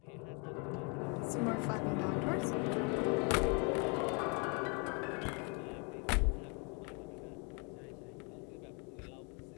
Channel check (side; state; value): right; quieter; 34.8 dB